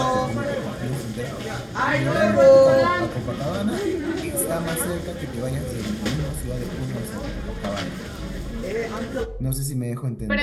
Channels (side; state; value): both; identical; correlation 1.00